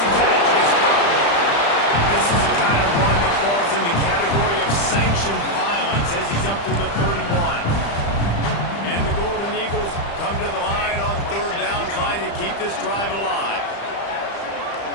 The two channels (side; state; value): right; late; 35 ms